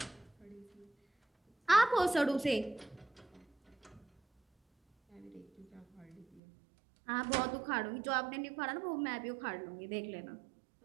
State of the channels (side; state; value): left; drops out; at 6.4 s